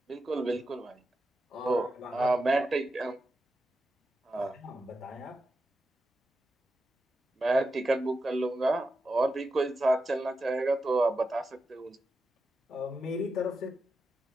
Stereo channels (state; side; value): normal; both; correlation 0.89